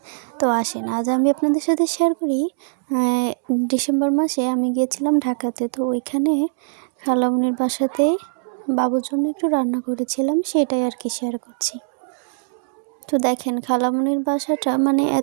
তো আসেন আজ আমি আপনাদের সাথে শেয়ার করি। ডিসেম্বর মাসে আমি গিয়েছিলাম ঢাকাতে। তো ওইখানে খালামণির বাসাতে বাবুর জন্য একটু রান্না করেছিলাম, সেটাই আর কি শেয়ার করছি। তো দেখেন খালামণির বাসাটা মানে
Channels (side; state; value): left; silent; digital silence